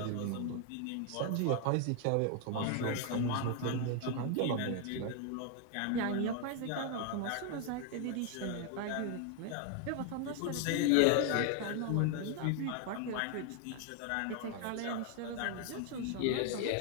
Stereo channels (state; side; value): different; both; correlation 0.01